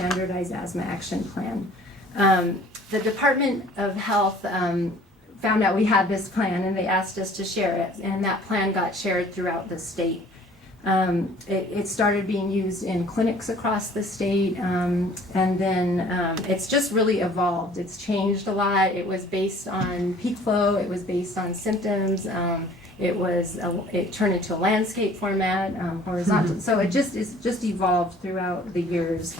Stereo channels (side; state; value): both; normal; correlation 0.52